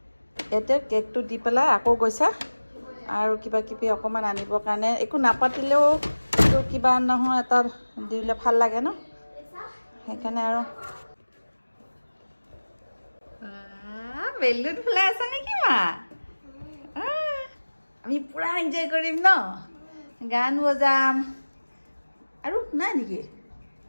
এতে কেকটো দি পেলাই আকৌ গৈছা আৰু কিবা কিবি অকণমান আনিবৰ কাৰণে একো নাপাতিলেও কিবা নহয় এটা দিলে ভাল লাগে ন সেইকাৰণে আৰু বেলুন ফুলাই আছা নেকি মা আমি পুৰা এনজয় কৰিম ন গান বজাম আৰু নাই নেকি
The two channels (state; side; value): inverted; both; correlation -1.00